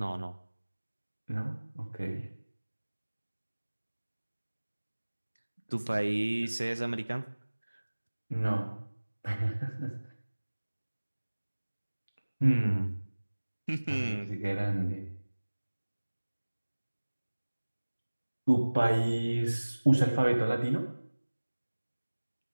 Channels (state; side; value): inverted; both; correlation -1.00